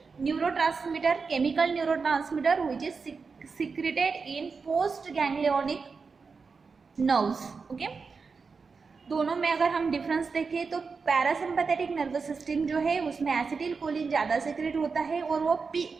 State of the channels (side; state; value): left; quieter; 4.9 dB